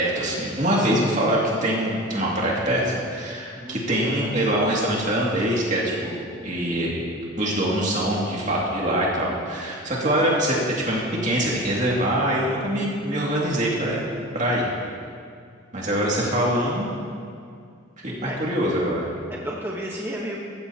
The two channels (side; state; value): both; normal; correlation 0.33